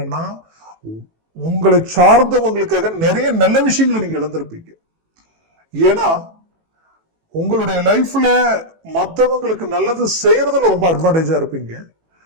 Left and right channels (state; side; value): late; left; 18 ms